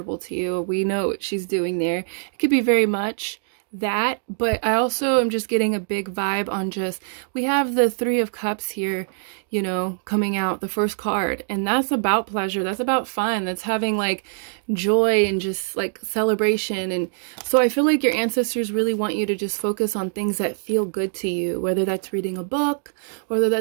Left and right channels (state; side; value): silent; left; digital silence